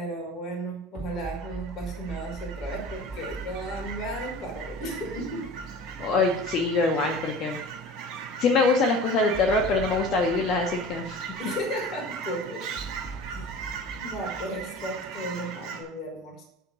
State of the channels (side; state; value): both; normal; correlation 0.39